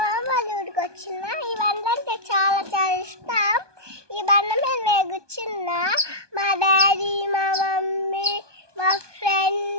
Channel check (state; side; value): late; left; 1.2 ms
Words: వాళ్ళ ఊరికి వచ్చిన. ఈ బండ్లు అంటే చాలా చాలా ఇష్టం. ఈ బండి మీద నేను కూర్చున్నా. మా డాడీ, మా మమ్మీ, మా